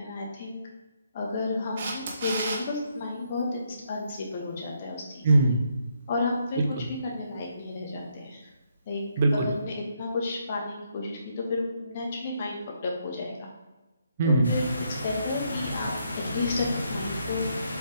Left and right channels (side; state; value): both; inverted; correlation -0.75